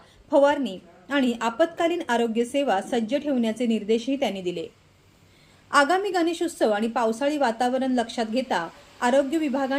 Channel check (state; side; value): identical; both; correlation 1.00